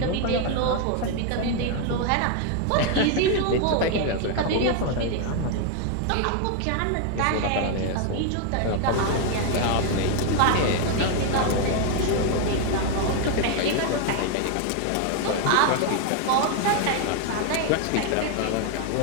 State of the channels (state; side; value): different; both; correlation 0.01